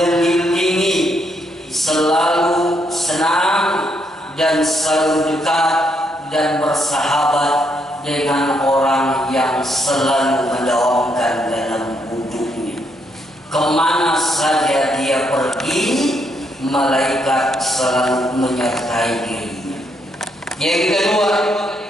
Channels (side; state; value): both; normal; correlation 0.76